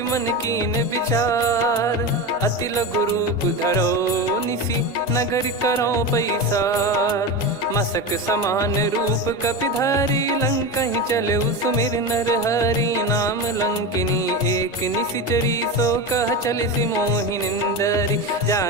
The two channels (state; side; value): normal; both; correlation 0.21